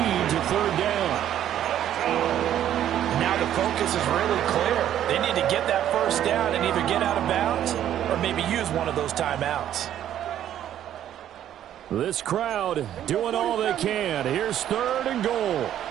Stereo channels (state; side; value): quieter; left; 11.1 dB